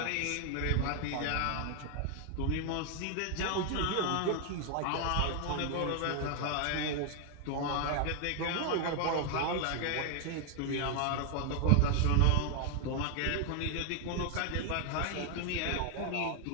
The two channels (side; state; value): both; different; correlation 0.00